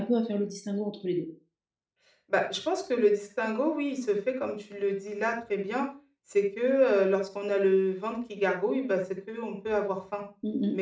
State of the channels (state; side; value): identical; both; correlation 1.00